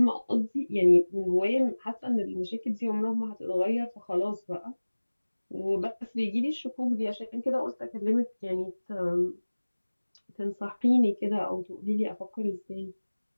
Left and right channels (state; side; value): inverted; both; correlation -1.00